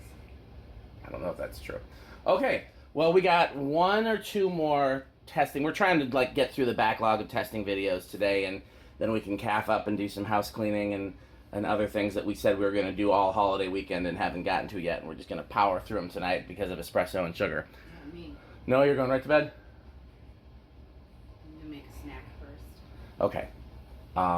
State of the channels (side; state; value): both; identical; correlation 1.00